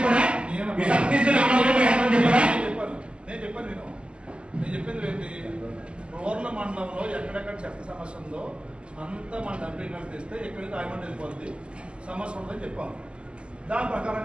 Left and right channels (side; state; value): left; late; 0.053 ms